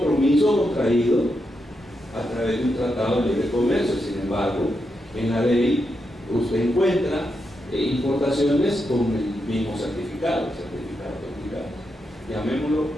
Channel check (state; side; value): normal; both; correlation 0.84